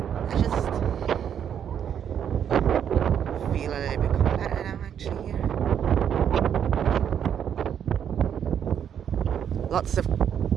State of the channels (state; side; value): quieter; left; 8.8 dB